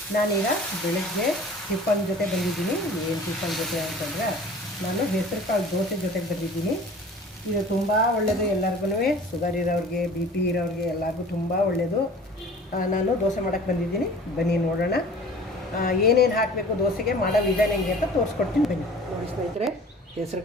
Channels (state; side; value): normal; both; correlation 0.45